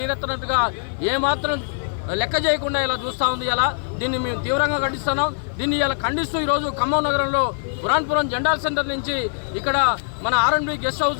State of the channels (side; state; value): right; silent; 61 dB below the other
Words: ఏమాత్రం లెక్క చేయకుండా ఇలా చూస్తూ ఉంది. ఇలా దీన్ని మేము తీవ్రంగా ఖండిస్తున్నాం. దీన్ని ఇలా ఖండిస్తూ ఈరోజు ఖమ్మం నగరంలో పురాణపురం జెండాల్ సెంటర్ నుంచి ఇక్కడ మన R&B గెస్ట్